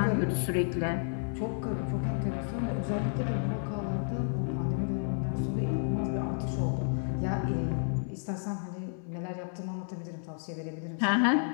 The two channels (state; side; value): silent; right; digital silence